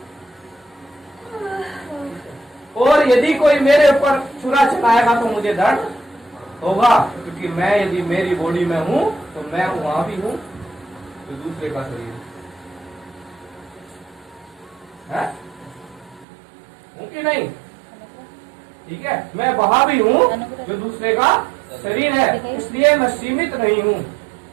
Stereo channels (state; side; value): drops out; left; at 16.2 s